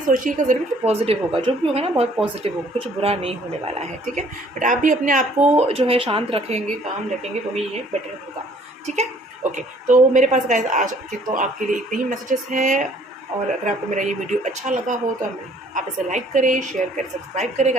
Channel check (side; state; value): both; normal; correlation 0.59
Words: ज़रूर कि पॉजिटिव होगा, जो भी होगा ना बहुत पॉजिटिव होगा, कुछ बुरा नहीं होने वाला है, ठीक है। बट आप भी अपने आप को जो है शांत रखेंगे, काम रखेंगे, तो ही ये बेटर होगा, ठीक है। ओके, तो मेरे पास गाइस आज के तो आपके लिए इतने ही मैसेजेस हैं। और अगर आपको मेरा ये वीडियो अच्छा लगा हो तो आप इसे लाइक करें, शेयर करें, सब्सक्राइब करें